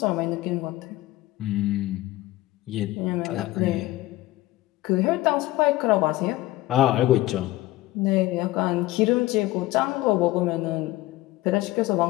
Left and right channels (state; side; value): quieter; right; 17.4 dB